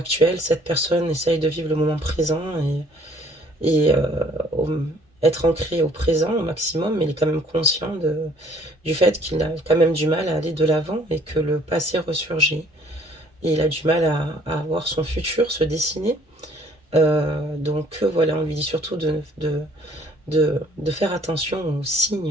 cette personne essaye de vivre le moment présent et au- être ancré au présent au maximum, mais il est quand même conscient du fait qu'il a quand même du mal à aller de l'avant et que le passé ressurgit. Et il a du mal à voir son futur se dessiner. Donc voilà, on lui dit surtout de faire attention aux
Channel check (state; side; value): normal; both; correlation 0.58